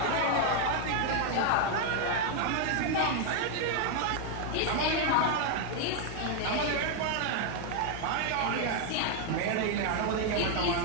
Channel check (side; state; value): both; different; correlation 0.00